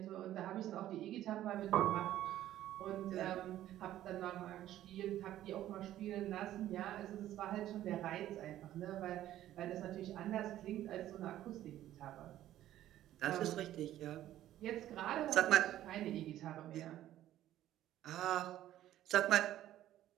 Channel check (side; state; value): left; quieter; 13.1 dB